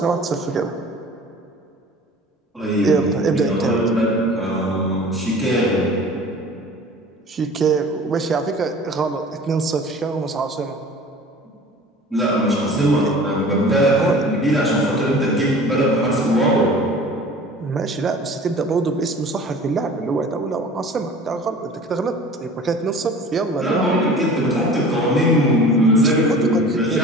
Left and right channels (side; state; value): both; normal; correlation 0.43